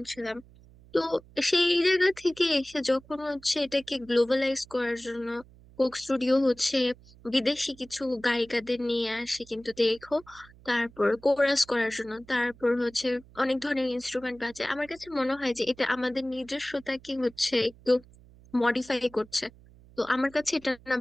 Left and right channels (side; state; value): right; noise; hum, 24 dB below the sound